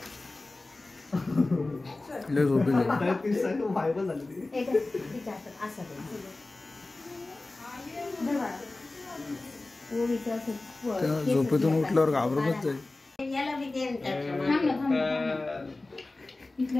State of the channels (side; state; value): right; quieter; 3.1 dB